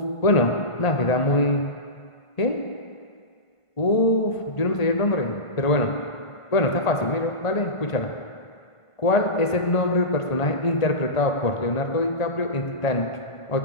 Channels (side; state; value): right; late; 1.5 ms